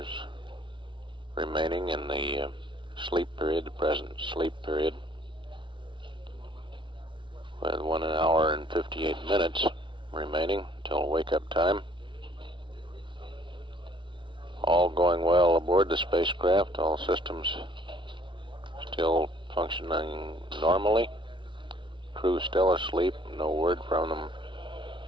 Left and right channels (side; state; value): left; late; 0.24 ms